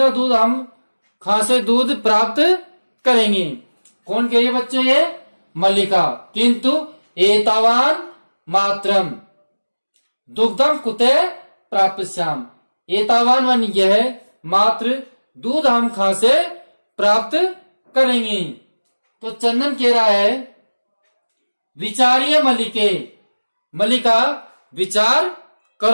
दूध हम कहां से दूध प्राप्त करेंगे। कौन कह रही है बच्चों, ये मल्लिका। किंतु एतावान मात्रम दुग्धम कुते प्राप्स्याम, एतावान वन यह मात्र दूध हम कहां से प्राप्त करेंगे। तो चंदन कह रहा है विचारिय मल्लिके, मल्लिका विचार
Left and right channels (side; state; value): both; inverted; correlation -1.00